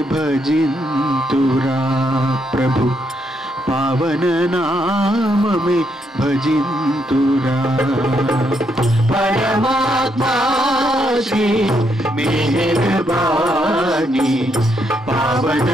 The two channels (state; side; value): normal; both; correlation 0.77